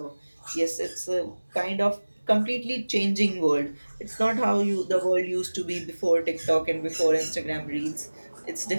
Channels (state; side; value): inverted; both; correlation -1.00